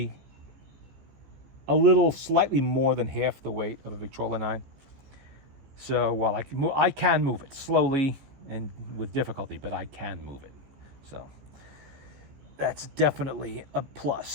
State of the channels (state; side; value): late; left; 15 ms